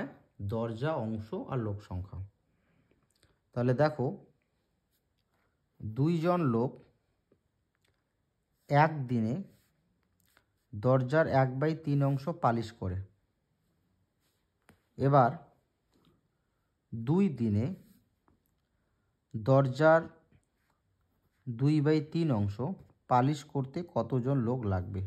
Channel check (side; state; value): both; identical; correlation 1.00